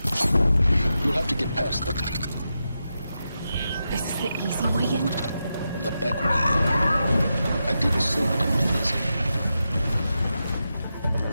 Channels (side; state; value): both; inverted; correlation -0.88